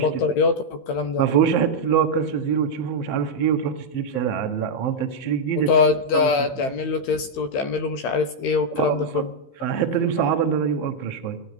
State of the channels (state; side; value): late; right; 15 ms